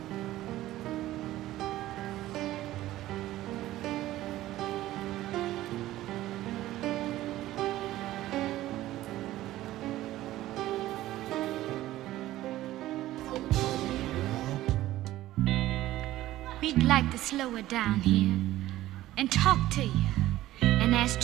We'd like to slow it down here and talk to you and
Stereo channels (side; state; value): left; quieter; 15.2 dB